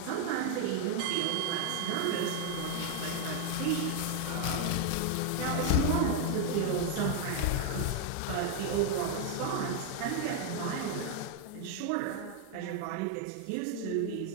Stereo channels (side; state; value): both; different; correlation 0.01